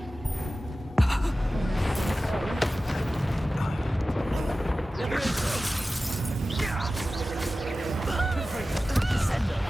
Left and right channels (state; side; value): normal; both; correlation 0.95